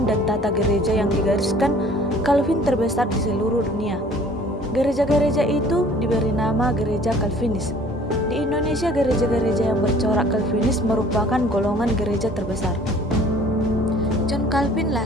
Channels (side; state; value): both; normal; correlation 0.52